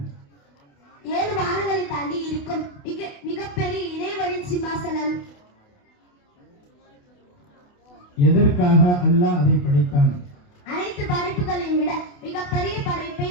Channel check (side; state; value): right; late; 28 ms